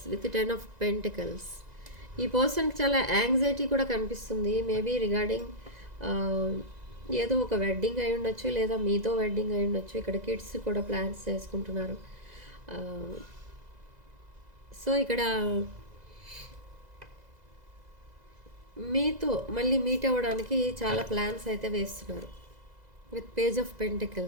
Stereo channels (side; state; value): left; late; 2.0 ms